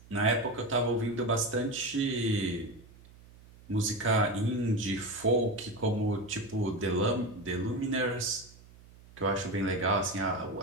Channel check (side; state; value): right; noise; hum, 23 dB below the sound